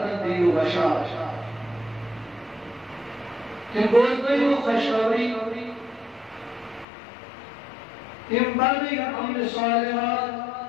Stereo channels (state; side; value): drops out; right; at 6.9 s